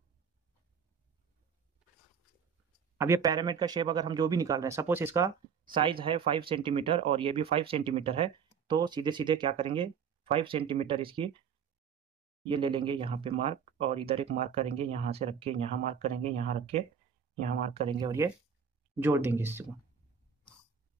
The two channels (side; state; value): left; quieter; 6.9 dB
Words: अब ये पैरामिड का शेप अगर हम जो भी निकाल रहे हैं, सपोज इसका साइज है 5 सेंटीमीटर और ये भी 5 सेंटीमीटर है, तो सीधे सीधे क्या करेंगे, 5 सेंटीमीटर इसकी ये ले लेंगे यहाँ पे मार्क, और इधर एक मार्क करेंगे, यहाँ से रख के यहाँ मार्क करेंगे, यहाँ रख के यहाँ मार्क करेंगे, और ये जोड़ देंगे इसको।